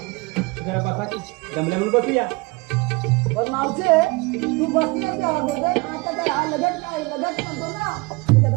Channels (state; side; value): quieter; left; 26.1 dB